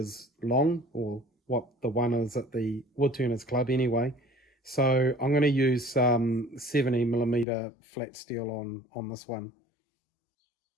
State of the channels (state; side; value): drops out; right; at 7.5 s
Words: long, or what the one is at the Woodturners Club anyway. So I'm going to use 70 millimeter flat steel on this one.